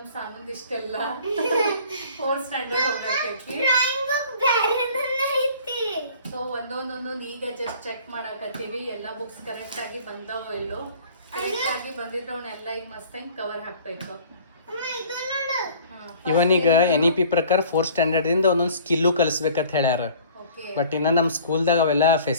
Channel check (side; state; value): both; inverted; correlation -0.49